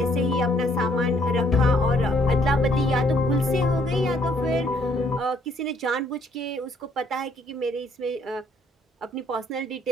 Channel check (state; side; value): normal; both; correlation 0.66